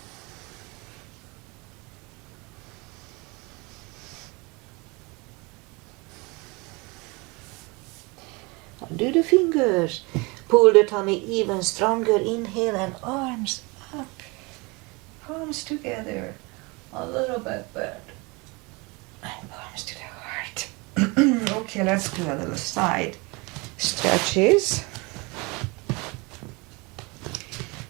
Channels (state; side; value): quieter; left; 26.9 dB